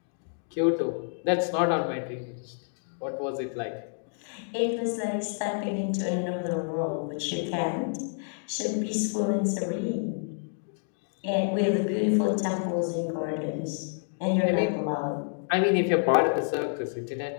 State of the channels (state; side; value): silent; right; digital silence